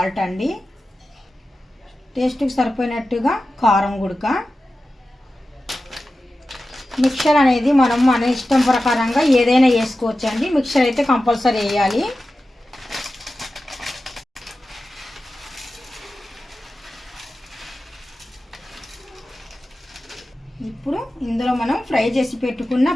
అండి, టేస్ట్కి సరిపోయినట్టుగా కారం గుడక. మిక్చర్ అనేది మనం మన ఇష్టం ప్రకారంగా ఏదైనా వేసుకోవచ్చు అండి. మిక్చర్ అయితే కంపల్సరీ వేయాలి. ఇప్పుడు ఇందులో మనం ఫ్రై చేసి పెట్టుకున్న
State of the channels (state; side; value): normal; both; correlation 0.94